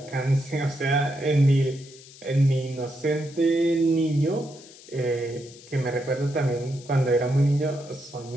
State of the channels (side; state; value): left; noise; hiss, 20 dB below the sound